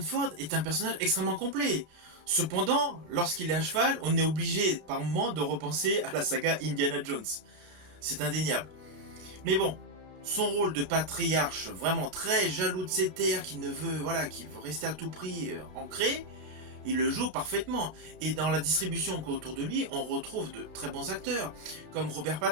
est un personnage extrêmement complet. Cependant, lorsqu'il est à cheval, on est obligé par moments de repenser à la saga Indiana Jones. C'est indéniable. Mais bon, son rôle de patriarche vraiment très jaloux de ses terres, qui veut rester à tout prix ancré, il le joue parfaitement. Et dans la distribution autour de lui, on retrouve de très bons acteurs, comme Robert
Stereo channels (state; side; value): late; left; 33 ms